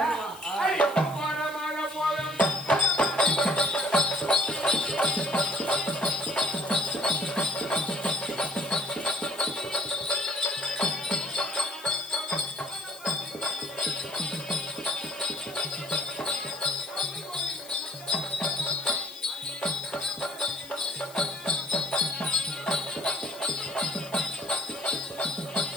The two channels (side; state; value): left; noise; hiss, 18 dB below the sound